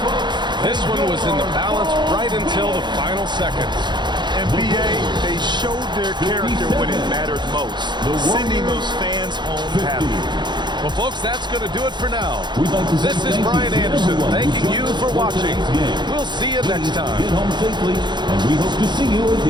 This one was in the balance right until the final seconds. NBA, they showed their character when it mattered most, sending those fans home happy. Well, folks, that's going to do it for now. This is Brian Anderson thanking you for watching. We'll see you next time. Get home safely, and we hope to see you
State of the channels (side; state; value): left; late; 0.22 ms